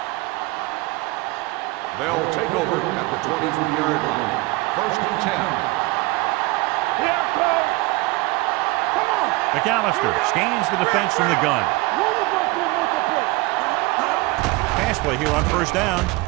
They'll take over at the 23-yard line. First and 10. Here, Cole. Come on. McAllister scans the defense from the gun. One of us will make a play. Pass play here on first down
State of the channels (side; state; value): left; quieter; 22.4 dB